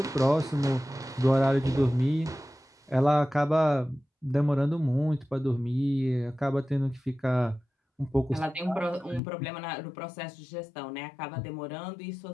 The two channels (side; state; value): right; drops out; at 9.2 s